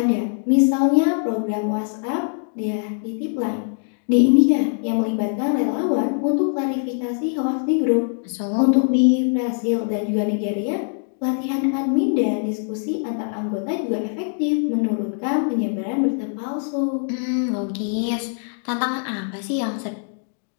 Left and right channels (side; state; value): right; silent; 64 dB below the other